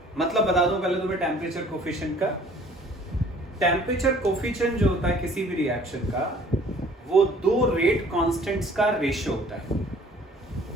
मतलब बता दो पहले तुम्हें टेम्परेचर कोफिशिएंट का। टेम्परेचर कोफिशिएंट जो होता है किसी भी रिएक्शन का, वो दो रेट कांस्टेंट्स का रेशियो होता है।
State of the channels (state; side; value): normal; both; correlation 0.54